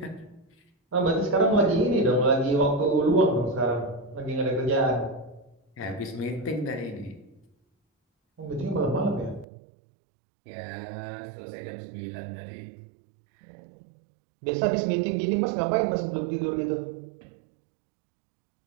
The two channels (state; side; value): drops out; left; at 9.5 s